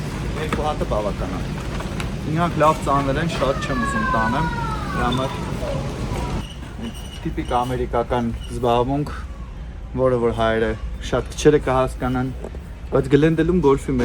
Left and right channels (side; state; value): both; identical; correlation 1.00